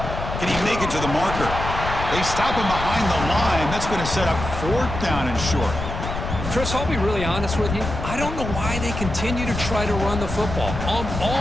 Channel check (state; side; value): noise; left; rumble, 6 dB below the sound